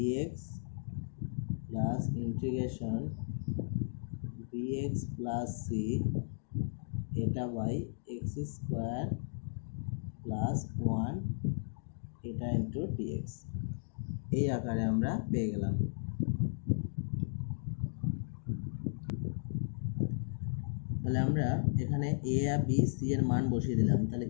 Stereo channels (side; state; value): right; silent; digital silence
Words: plus integration bx plus c এটা বাই এক্স স্কোয়ার প্লাস 1 এটা ইন্টু ডিএক্স, এই আকারে আমরা পেয়ে গেলাম। তাহলে আমরা এখানে এ আর বি সি এর মান বসিয়ে দিলাম। তাহলে